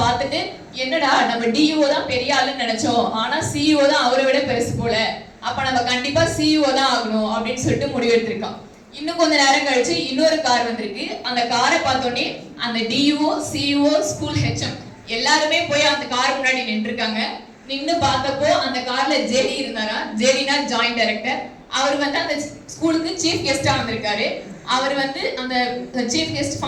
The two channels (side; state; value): both; identical; correlation 1.00